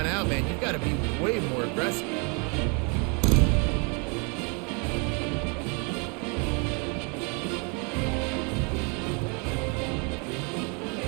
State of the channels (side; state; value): left; quieter; 34.0 dB